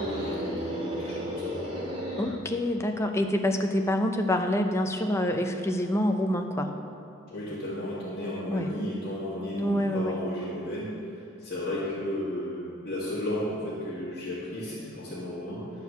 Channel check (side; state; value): both; normal; correlation 0.65